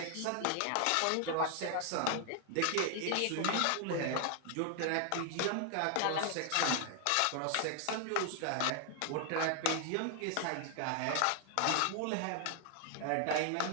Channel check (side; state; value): both; different; correlation 0.00